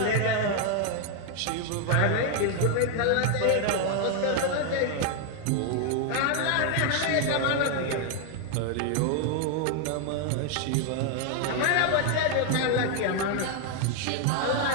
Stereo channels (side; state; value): both; different; correlation 0.00